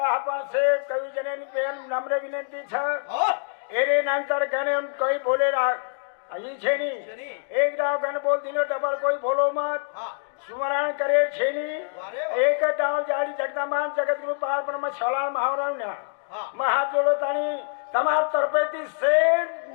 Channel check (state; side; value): silent; right; digital silence